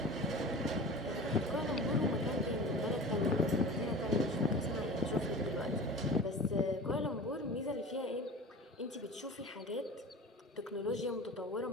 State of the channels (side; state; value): both; normal; correlation 0.36